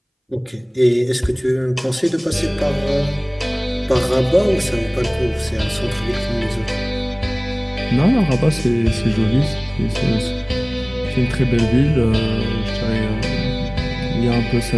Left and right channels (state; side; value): identical; both; correlation 1.00